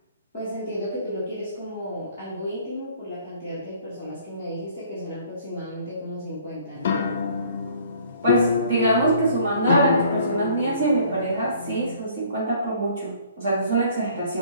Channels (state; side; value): inverted; both; correlation -0.56